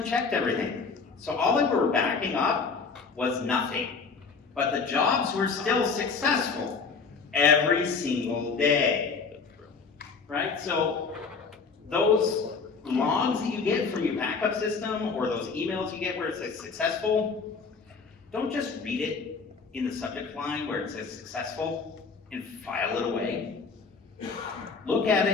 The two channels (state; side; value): quieter; right; 5.0 dB